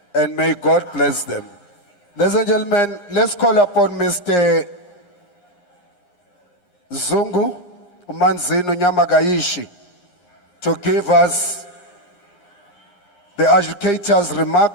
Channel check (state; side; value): late; right; 11 ms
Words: And may God bless them. Ladies and gentlemen, let's call upon Mr. Zungu Manzino Nyamagaishi to give us the educators'